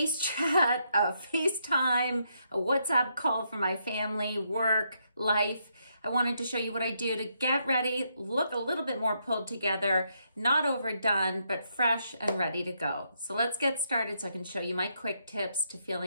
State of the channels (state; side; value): inverted; both; correlation -0.77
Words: chat, a FaceTime, a WhatsApp call for my family, work, life. I wanted to show you what I do to get ready, look a little bit more pulled together, not overdone, but fresh and ready to go. So let's get started so I can show you my quick tips to